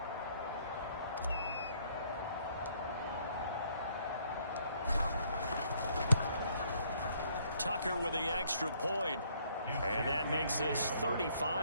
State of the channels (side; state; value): both; inverted; correlation -0.66